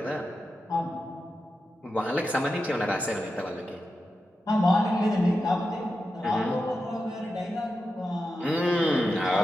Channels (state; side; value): normal; both; correlation 0.90